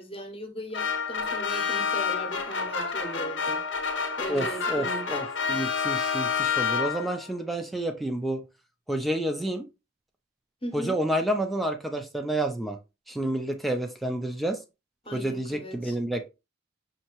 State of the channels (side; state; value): both; normal; correlation 0.39